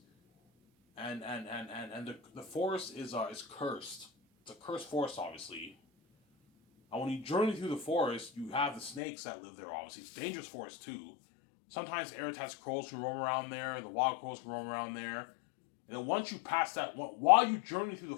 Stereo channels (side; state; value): right; drops out; at 9.0 s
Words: and the forest is cursed. It's a cursed forest, obviously. And when you journey through the forest, you have the snakes that live there, obviously. It's a dangerous forest, too. Sometimes Eritaz crows can roam around there, the wild crows can roam around there. And then once you pass that, while you journey through the